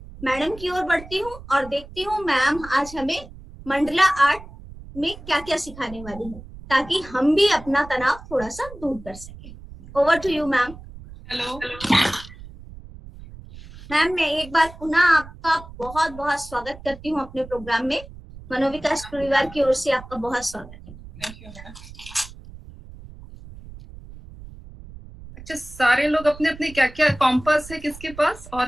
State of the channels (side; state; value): right; noise; rumble, 16 dB below the sound